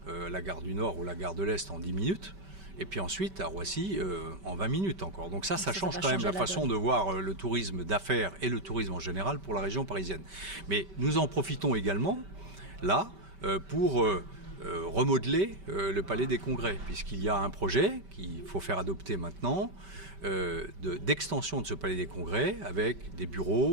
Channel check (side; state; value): left; late; 5.2 ms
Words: la gare du Nord ou la gare de l'Est en 10 minutes, et puis ensuite à Roissy en 20 minutes encore. Donc ça change quand même la façon de voir le tourisme d'affaires et le tourisme en général pour la région parisienne. Mais nous en profitons également, là, pour remodeler le Palais des Congrès, puisqu'il y a un projet qu'il faut faire adopter maintenant, d'extension de ce Palais des Congrès avec des